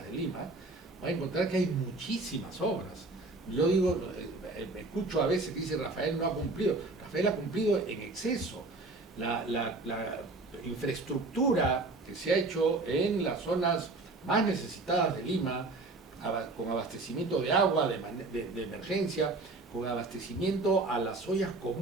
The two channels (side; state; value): left; quieter; 3.3 dB